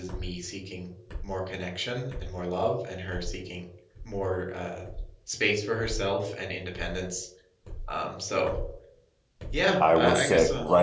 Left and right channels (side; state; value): both; identical; correlation 1.00